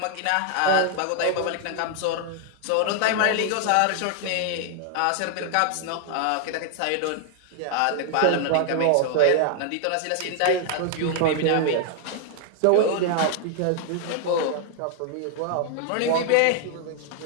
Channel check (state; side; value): different; both; correlation 0.00